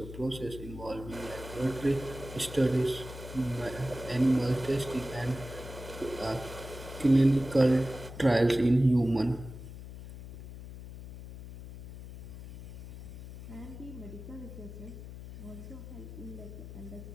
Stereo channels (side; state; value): left; noise; hum, 12 dB below the sound